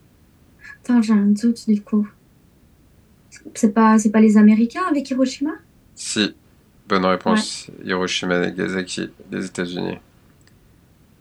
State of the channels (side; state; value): both; identical; correlation 1.00